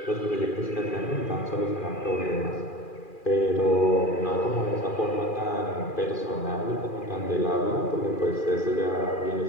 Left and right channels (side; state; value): right; late; 2.4 ms